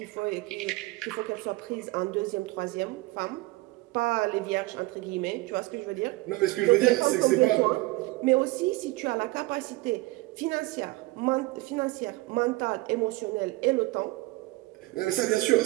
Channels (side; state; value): left; quieter; 21.1 dB